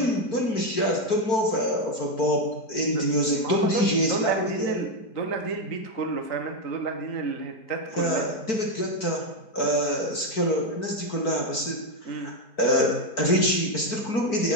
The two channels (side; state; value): right; late; 4.5 ms